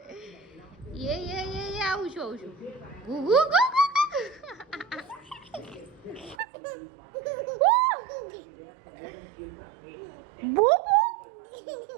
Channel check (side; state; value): left; drops out; at 6.4 s